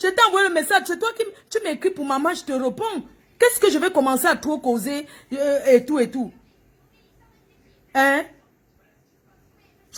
envoyé le message. C'est toi qui tu m'écris pour maman, je te réponds. Qu'est-ce que je vais commencer à trop causer et tout et tout? Hein?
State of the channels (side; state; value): both; identical; correlation 1.00